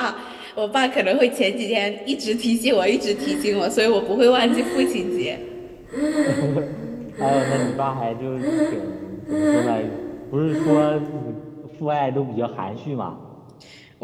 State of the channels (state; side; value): identical; both; correlation 1.00